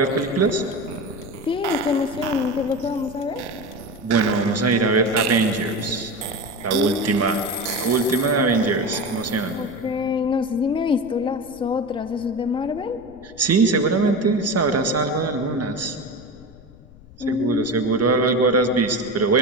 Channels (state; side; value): noise; left; rumble, 22 dB below the sound